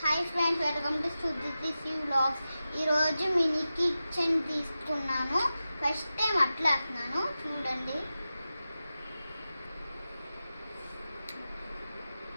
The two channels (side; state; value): both; inverted; correlation -0.93